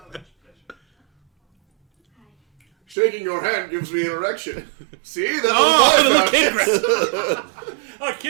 Shaking your hand gives me an erection. See? That's Oh, what the kid I grabs. Oh,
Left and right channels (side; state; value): left; drops out; at 3.0 s